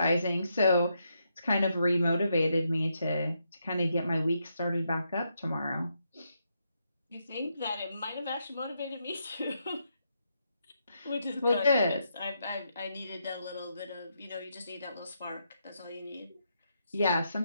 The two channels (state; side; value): inverted; both; correlation -0.80